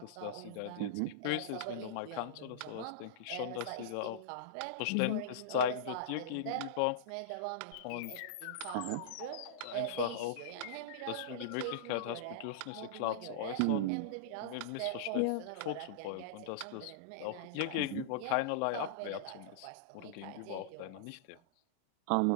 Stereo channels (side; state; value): both; different; correlation -0.03